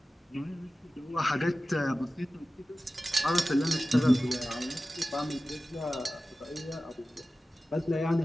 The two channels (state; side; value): normal; both; correlation 0.95